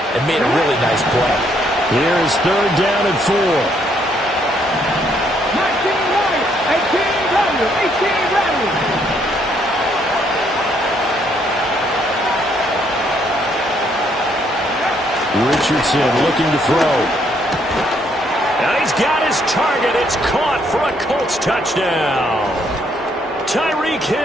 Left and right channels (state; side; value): normal; both; correlation 0.70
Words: and made a really nice play. Here is 3rd down and 4. 18 rally. Richardson looking to throw. Now he's got his target. It's caught for a Colts touchdown. Tyreek